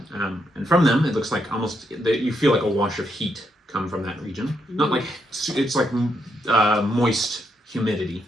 and from them it looks like almost you feel like a wash of heat come from that region. Not like it's like moist humidity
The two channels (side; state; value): both; normal; correlation 0.79